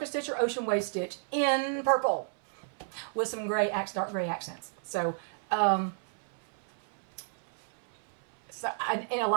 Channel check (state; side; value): silent; left; 57 dB below the other